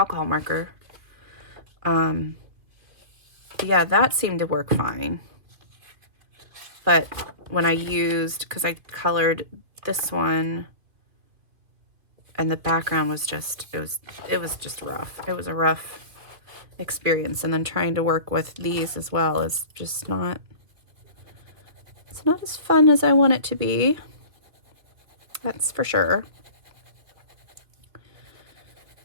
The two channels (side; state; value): left; late; 2.6 ms